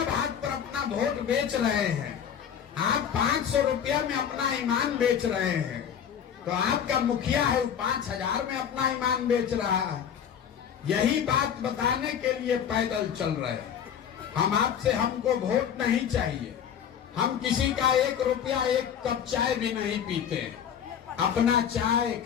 भात पर अपना वोट बेच रहे हैं, आप 500 रुपया में अपना ईमान बेच रहे हैं, तो आपका मुखिया है वो 5000 में अपना ईमान बेच रहा है। यही बात बताने के लिए पैदल चल रहे हैं। हम आपसे, हमको वोट नहीं चाहिए, हम किसी का 1 रुपया 1 कप चाय भी नहीं पीते, अपना चाय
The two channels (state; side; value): quieter; right; 8.5 dB